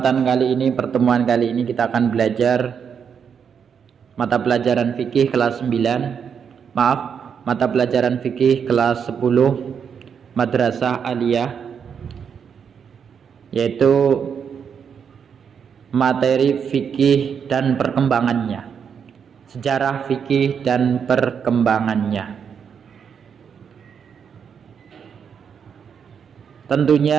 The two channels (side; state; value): left; quieter; 7.1 dB